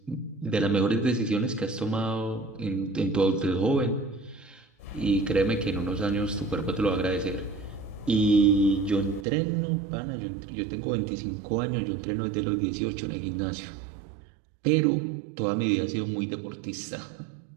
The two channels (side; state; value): left; drops out; at 9.2 s